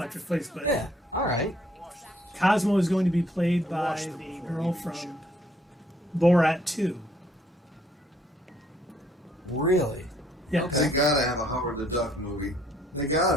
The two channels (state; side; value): normal; both; correlation 0.65